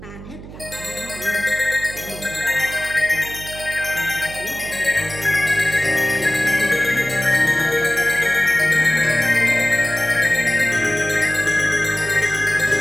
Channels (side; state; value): right; noise; hum, 14 dB below the sound